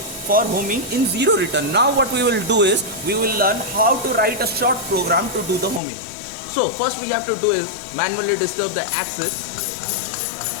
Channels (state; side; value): drops out; right; at 5.8 s